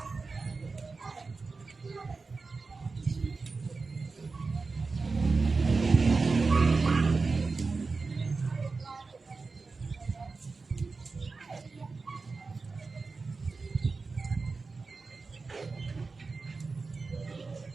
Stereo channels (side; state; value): left; quieter; 4.2 dB